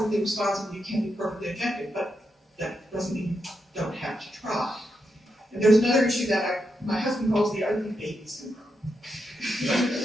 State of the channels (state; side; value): normal; both; correlation 0.84